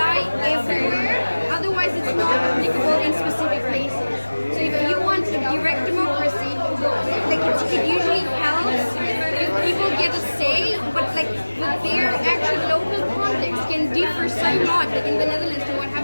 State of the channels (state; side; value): inverted; both; correlation -1.00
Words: everywhere. Otherwise, it's not applicable in specific places. So if you want a direct democracy, like it usually helps if people get a say, but like their actual local context can differ differ so much. Like in the Netherlands, so what